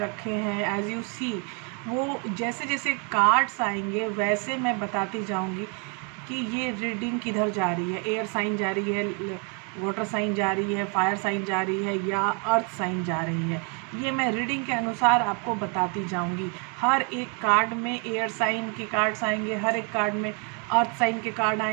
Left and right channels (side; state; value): left; quieter; 36.0 dB